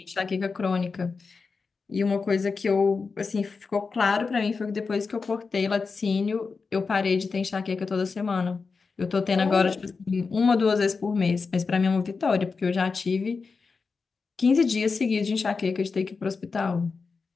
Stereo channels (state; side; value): quieter; right; 4.7 dB